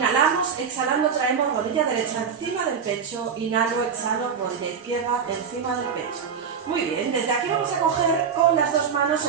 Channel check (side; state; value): left; quieter; 6.7 dB